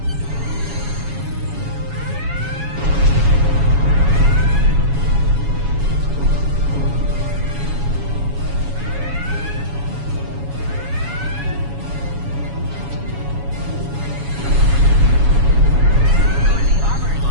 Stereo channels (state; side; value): late; left; 7.2 ms